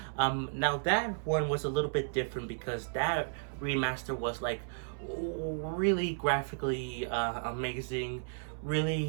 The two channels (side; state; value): left; silent; 55 dB below the other